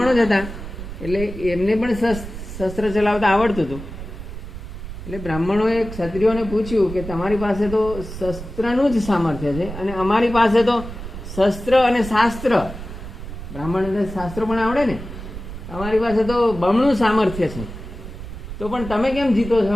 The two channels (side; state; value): right; noise; rumble, 10 dB below the sound